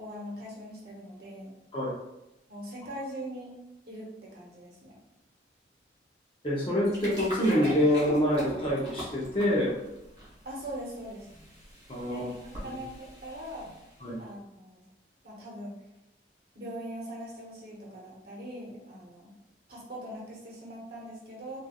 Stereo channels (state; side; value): normal; both; correlation 0.51